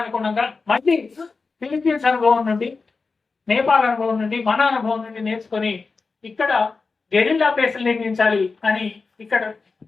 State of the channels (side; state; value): right; quieter; 4.3 dB